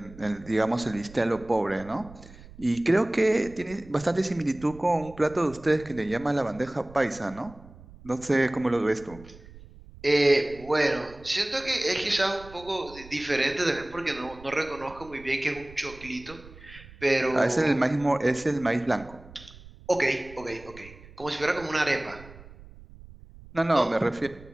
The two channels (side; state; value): right; noise; rumble, 20 dB below the sound